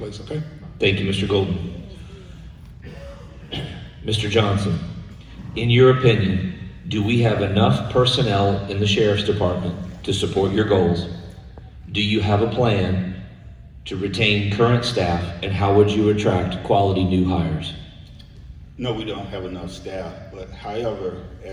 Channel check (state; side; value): identical; both; correlation 1.00